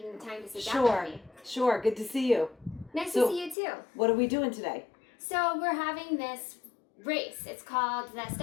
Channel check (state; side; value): drops out; right; at 3.6 s